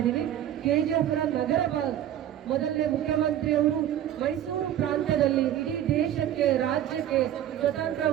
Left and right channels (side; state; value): left; quieter; 11.3 dB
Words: KGFನ ನಗರ ಭಾಗ ಮೊದಲನೇ ಮುಖ್ಯಮಂತ್ರಿಯವರು ಮೈಸೂರು ಪ್ರಾಂತ್ಯದಲ್ಲಿ ಇಡೀ ದೇಶಕ್ಕೆ, ರಾಜ್ಯಕ್ಕೆ ಸ್ವತಂತ್ರ